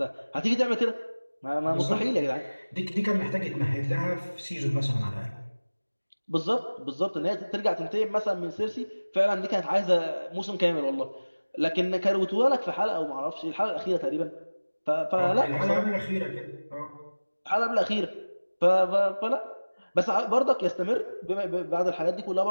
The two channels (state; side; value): inverted; both; correlation -1.00